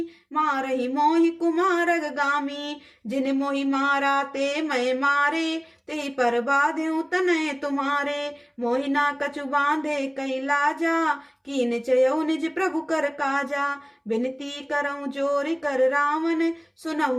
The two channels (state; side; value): identical; both; correlation 1.00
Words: मारहि मोहि कुमारग गामी। जिन मोहि मारा ते मैं मारे, तेहि पर बाध्यु तनय तुम्हारे। मोहि ना कछु बांधे कई लाजा, कीन चयऊ निज प्रभु कर काजा। बिनती करऊं जोरि कर रावण,